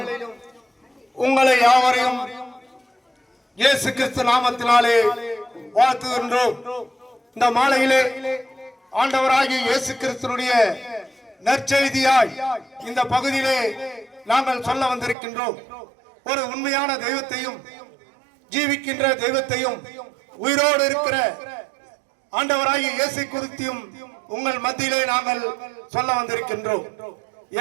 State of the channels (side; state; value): left; drops out; at 15.2 s